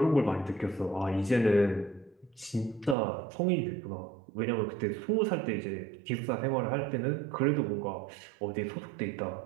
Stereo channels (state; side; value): drops out; left; at 3.0 s